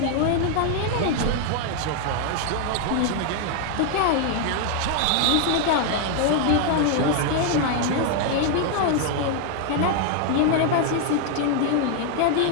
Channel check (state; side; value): different; both; correlation 0.00